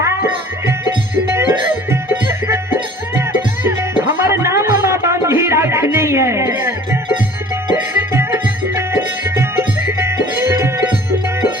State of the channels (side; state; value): both; normal; correlation 0.48